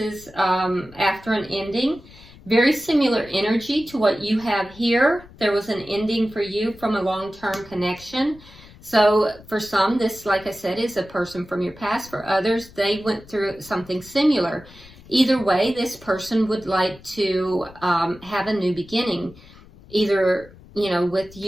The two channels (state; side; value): noise; left; rumble, 22 dB below the sound